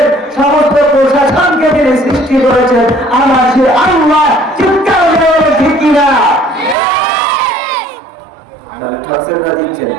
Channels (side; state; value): left; drops out; at 6.8 s